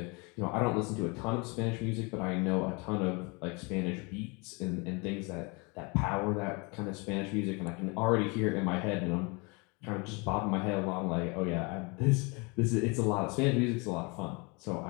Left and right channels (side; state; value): right; quieter; 29.8 dB